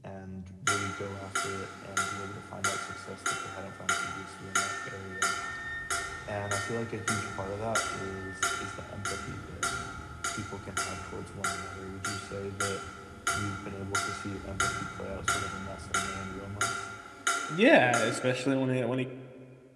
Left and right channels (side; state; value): both; identical; correlation 1.00